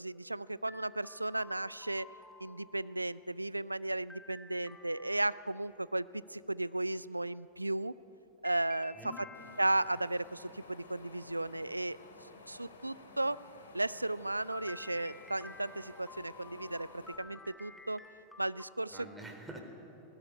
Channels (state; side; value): inverted; both; correlation -0.95